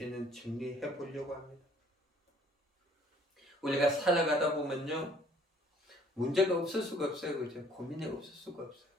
정리해 보려고 합니다. 우리가 살아가다 보면요. 문제가 없을 수가 없어요. 그죠? 고민이 없을 수가 없어요.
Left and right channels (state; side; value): normal; both; correlation 0.58